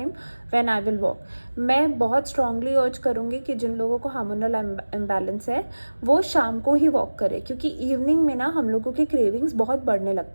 when I will walk. मैं बहुत स्ट्रांगली अर्ज करूँगी कि जिन लोगों को हार्मोनल इम्बैलेंस है वो शाम को ही वॉक करें, क्योंकि इवनिंग में ना हम लोगों के क्रेविंग्स बहुत बढ़ने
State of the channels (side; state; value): both; inverted; correlation -1.00